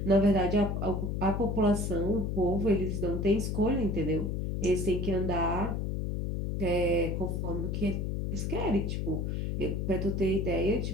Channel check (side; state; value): left; noise; hum, 1 dB below the sound